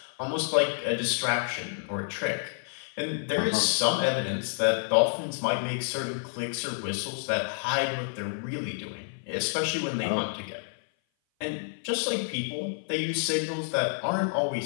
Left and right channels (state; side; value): silent; right; 56 dB below the other